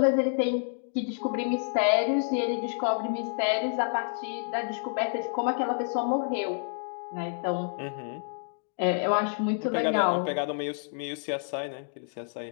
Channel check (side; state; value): right; silent; digital silence